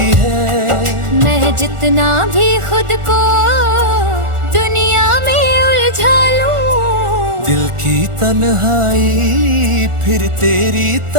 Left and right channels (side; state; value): left; late; 1.4 ms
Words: है। मैं जितना भी खुद को दुनिया में उलझा लूं, दिल की तन्हाई फिर तेरी